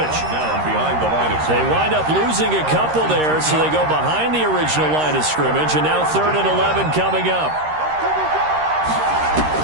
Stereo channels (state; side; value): late; left; 13 ms